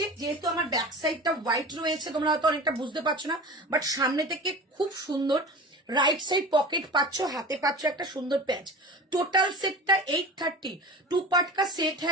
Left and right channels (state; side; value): normal; both; correlation 0.35